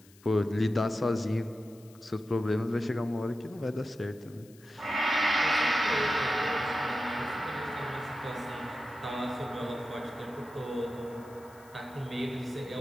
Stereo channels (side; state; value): left; noise; hiss, 26 dB below the sound